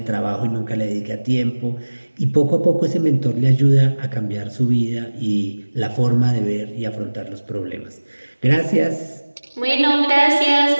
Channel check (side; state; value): both; inverted; correlation -1.00